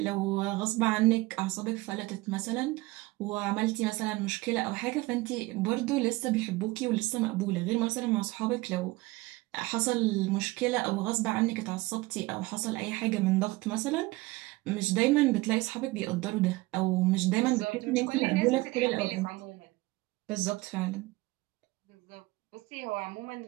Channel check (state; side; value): quieter; left; 21.3 dB